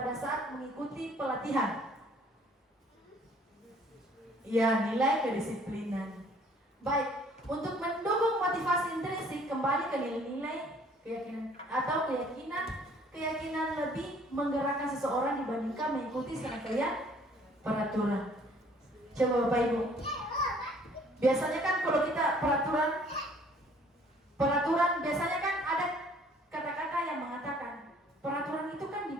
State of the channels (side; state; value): both; normal; correlation 0.58